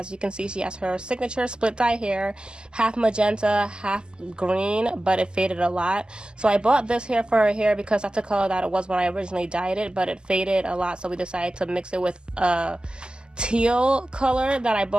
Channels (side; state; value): left; late; 0.047 ms